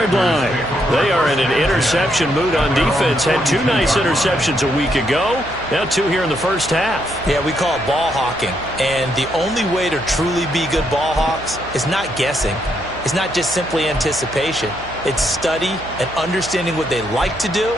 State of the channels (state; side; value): noise; right; hum, 17 dB below the sound